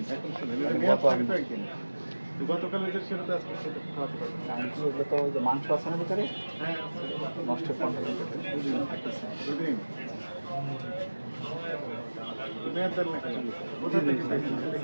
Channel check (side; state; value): both; inverted; correlation -1.00